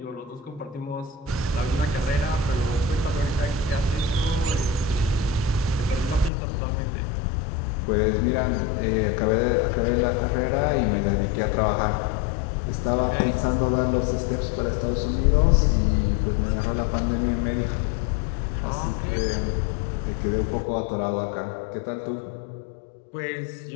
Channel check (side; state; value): right; drops out; at 6.3 s